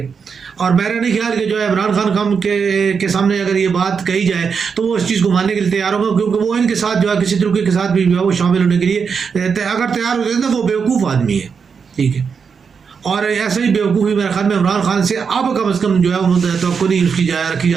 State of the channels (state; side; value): quieter; left; 6.0 dB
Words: اور میرا نہیں خیال کہ جو ہے عمران خان کے سامنے اگر یہ بات کہی جائے تو وہ اس چیز کو ماننے کے لیے تیار ہوگا، کیونکہ وہ ان کے ساتھ جو ہے کسی طریقے کے ساتھ بھی جو ہے وہ شامل ہونے کے لیے اگر تیار ہو جائے تو وہ بیوقوف آدمی ہے، ٹھیک ہے، اور ایسا ہی بیوقوفی میرے خیال میں عمران خان سے اب کم از کم جو ہے وہ توقع نہیں اس کی رکھی